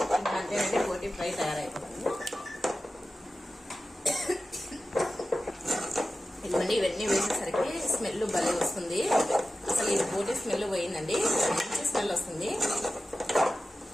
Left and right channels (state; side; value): normal; both; correlation 0.94